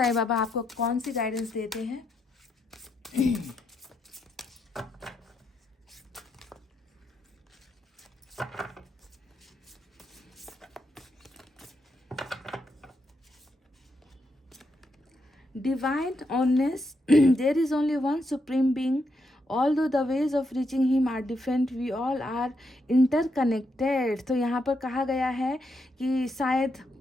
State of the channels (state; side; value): normal; both; correlation 0.81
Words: बाबा आपको कौन सी गाइडेंस देते हैं। Divine honest, there is only one supreme being. Although the ways of reaching him are different, we all are interconnected. तो यहाँ पर कहा गया है कि शायद